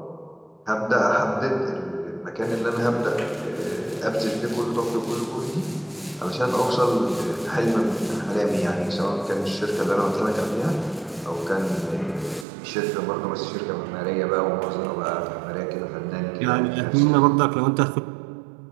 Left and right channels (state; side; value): drops out; left; at 12.5 s